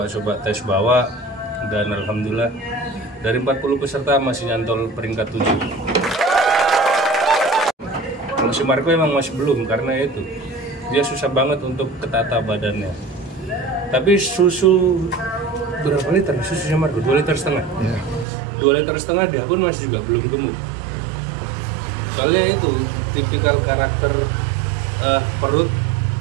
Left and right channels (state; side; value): drops out; left; at 18.2 s